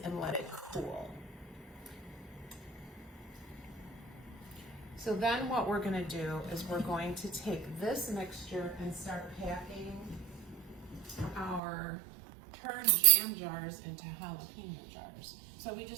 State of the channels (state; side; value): drops out; left; at 11.6 s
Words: let it cool. So then what we're gonna do is we're going to take this mixture and start packing our turned jam jars into jalapeno jars. So we